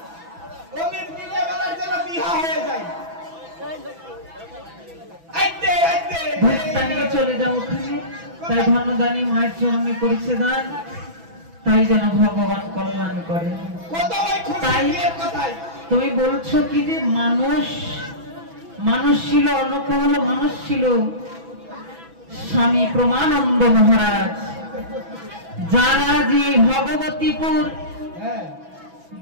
অমিত বিয়ে বেলার যেন বিয়ে হয়ে যায়। আইতে আইতে ভক্তানিকে চলে যাও ওখানে। তাই ধন্যদানী মায়ের চরণে করেছে দান তাই যেন ভগবান কল্যাণ করে। তাই তুমি বলছো কি যে মানুষ ছিল অন্নপ্রবল মানুষ ছিল স্বামী প্রমানন্দ মহারাজ যারা যে ভগবতীপুর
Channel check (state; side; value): late; left; 6.0 ms